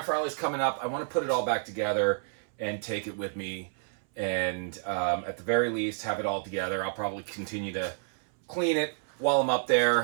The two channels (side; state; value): left; silent; 58 dB below the other